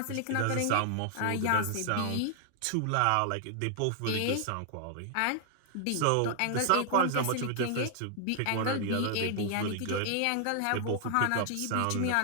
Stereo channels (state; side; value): different; both; correlation 0.00